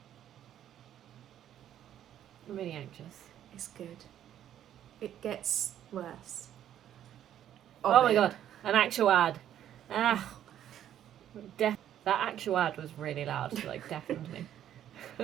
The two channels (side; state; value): left; quieter; 10.9 dB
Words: I'm really anxious. It's good. It gets worse. Oh my god, an actual ad. Ah. That actual ad was really loud, like deafened me.